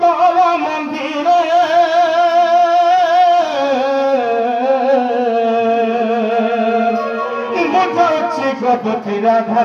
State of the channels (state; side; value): identical; both; correlation 1.00